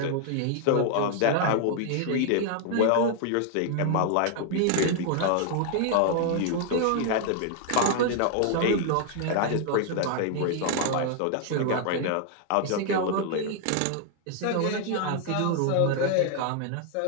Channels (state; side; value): different; both; correlation 0.00